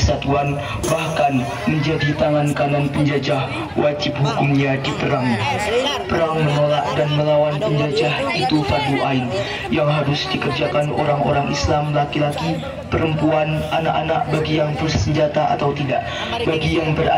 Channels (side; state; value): both; identical; correlation 1.00